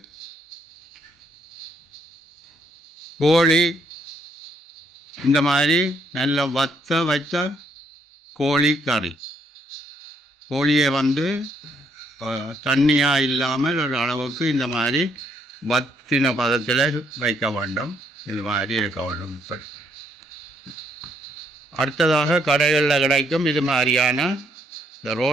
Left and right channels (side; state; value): both; normal; correlation 0.71